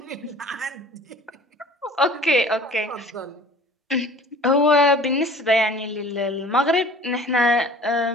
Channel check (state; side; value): normal; both; correlation 0.46